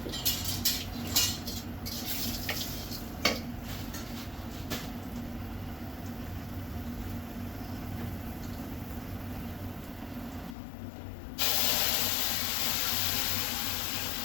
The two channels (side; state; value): right; drops out; at 10.6 s